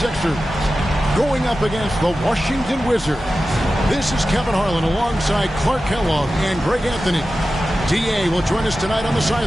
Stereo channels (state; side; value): normal; both; correlation 0.94